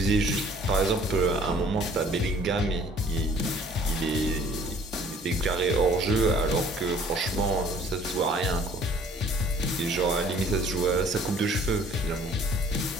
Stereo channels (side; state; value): both; normal; correlation 0.55